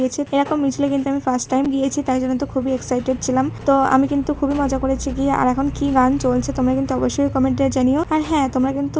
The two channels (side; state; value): both; identical; correlation 1.00